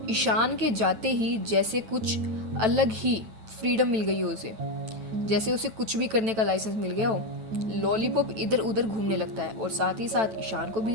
ईशान के जाते ही जैसे कुछ अलग ही फ्रीडम मिल गई है उसे। जैसे उसे कुछ भी करने का लाइसेंस मिल गया हो। लॉलीपॉप इधर उधर घूमने लगता है और साथ ही साथ ईशान को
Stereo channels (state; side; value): late; left; 9.0 ms